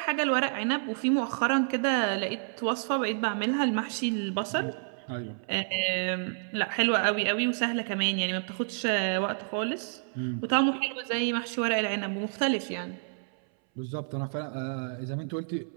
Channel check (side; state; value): left; silent; 58 dB below the other